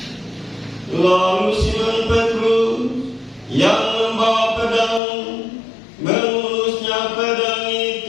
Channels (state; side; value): drops out; right; at 5.0 s